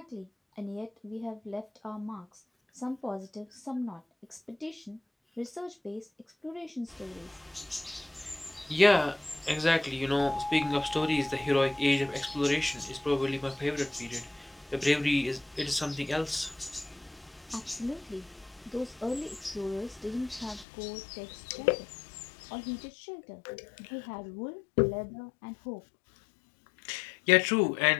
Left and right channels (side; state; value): right; drops out; at 20.7 s